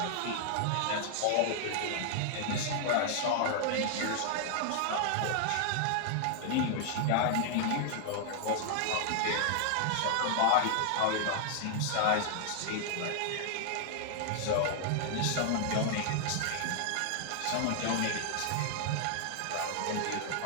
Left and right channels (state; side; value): different; both; correlation 0.00